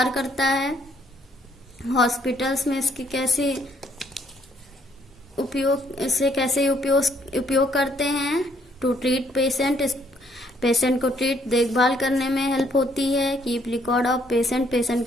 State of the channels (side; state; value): both; normal; correlation 0.68